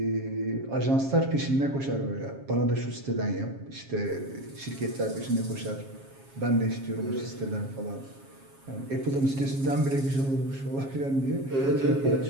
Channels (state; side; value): late; left; 7.3 ms